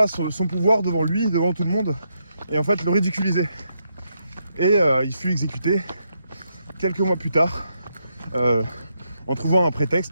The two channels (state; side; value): inverted; both; correlation -0.80